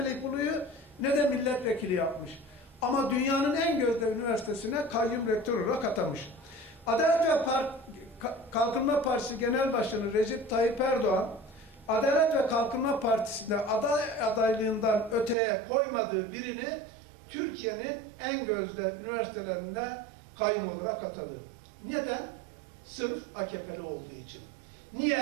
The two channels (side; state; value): left; drops out; at 15.4 s